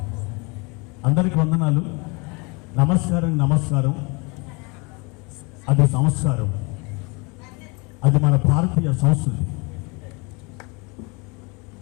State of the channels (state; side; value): quieter; right; 29.5 dB